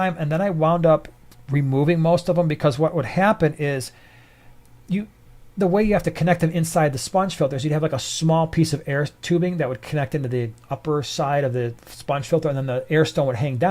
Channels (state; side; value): identical; both; correlation 1.00